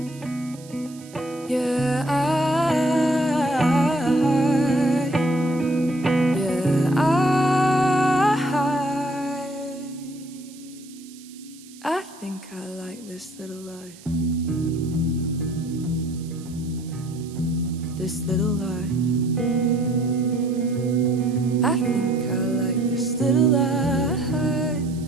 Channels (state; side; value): noise; right; hiss, 22 dB below the sound